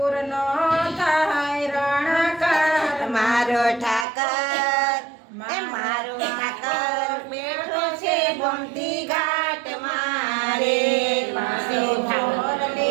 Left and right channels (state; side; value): drops out; left; at 4.0 s